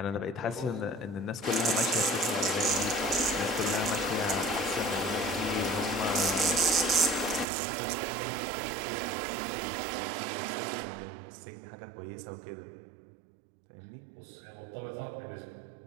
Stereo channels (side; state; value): left; drops out; at 7.5 s